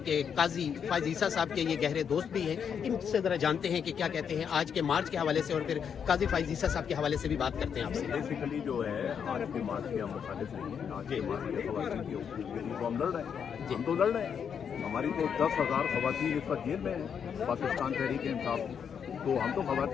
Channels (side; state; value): right; quieter; 7.4 dB